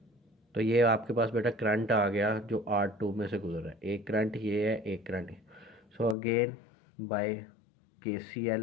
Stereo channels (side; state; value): right; drops out; at 6.2 s